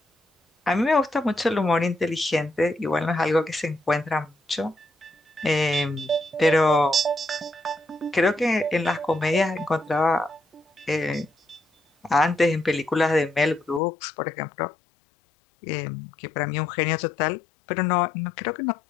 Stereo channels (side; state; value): right; drops out; at 13.8 s